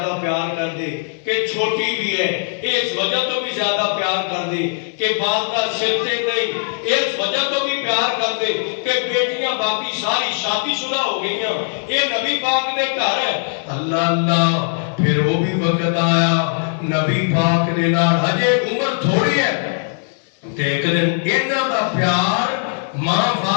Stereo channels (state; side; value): silent; right; digital silence